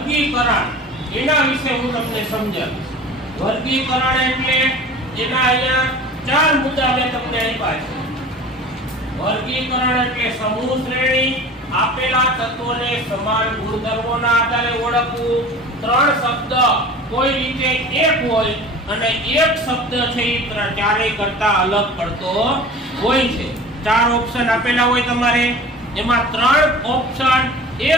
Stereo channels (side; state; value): both; normal; correlation 0.40